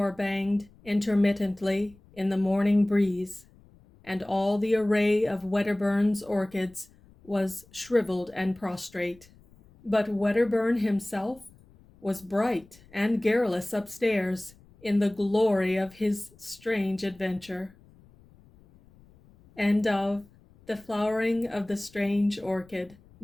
banged intermittently in the morning breeze, and all the array of Wedderburn's orchids was shriveled and prostrate. But Wedderburn himself was bright and garrulous upstairs in the glory of his strange adventure. End of The Flowering of the Strange Orchid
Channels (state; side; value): noise; left; rumble, 27 dB below the sound